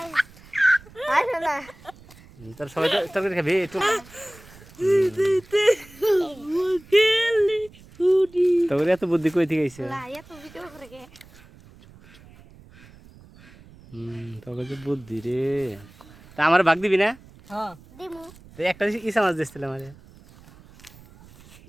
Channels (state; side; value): noise; right; rumble, 23 dB below the sound